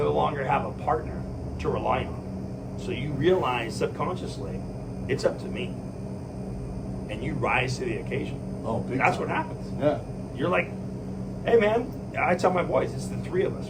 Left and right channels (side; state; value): both; identical; correlation 1.00